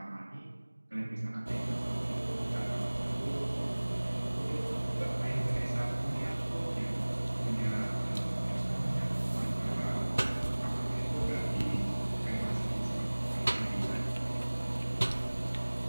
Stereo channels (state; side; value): inverted; both; correlation -1.00